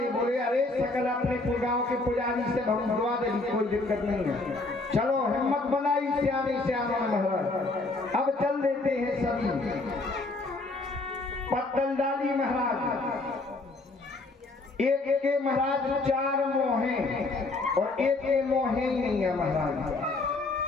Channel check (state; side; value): quieter; right; 3.2 dB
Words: बोले अरे सकल अपने गांव के पुजारी से भगवा दे, कोई दिक्कत नहीं है। चलो हिम्मत बनाई सियाने सियानों महाराज। अब चल देते हैं सभी। पत्तल डाली महाराज। एक के महाराज 4 मोहे और एक के मोहे ही नहीं है महाराज।